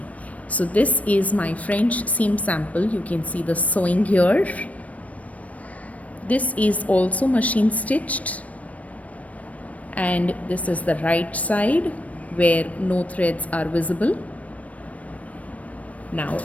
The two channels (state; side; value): late; right; 0.067 ms